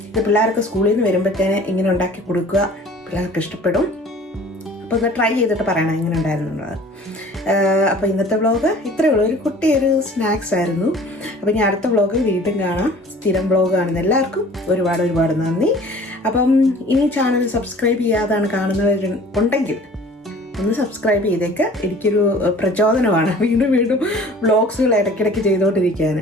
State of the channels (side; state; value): both; normal; correlation 0.48